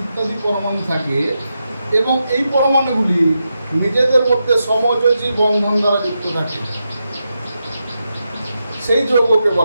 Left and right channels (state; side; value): inverted; both; correlation -0.87